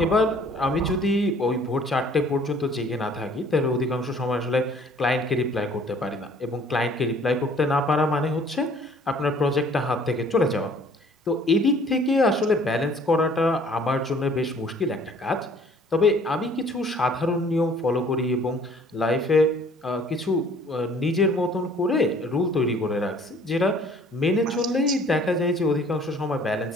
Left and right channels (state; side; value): normal; both; correlation 0.55